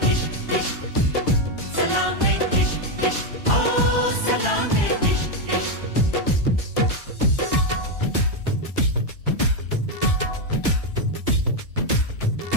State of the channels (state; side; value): late; right; 1.4 ms